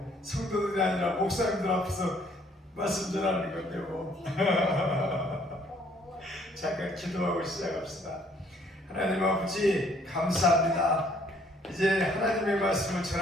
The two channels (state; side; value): normal; both; correlation 0.62